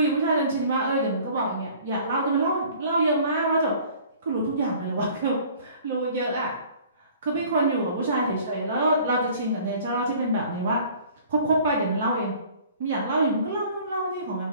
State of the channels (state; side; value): inverted; both; correlation -0.50